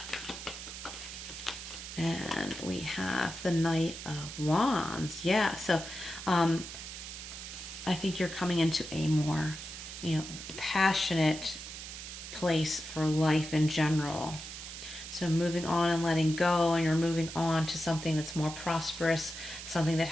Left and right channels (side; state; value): right; noise; hiss, 10 dB below the sound